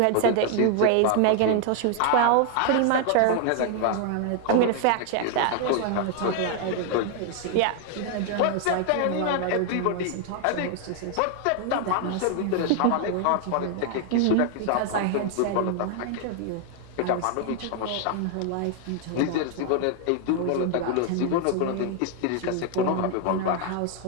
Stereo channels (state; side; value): different; both; correlation 0.00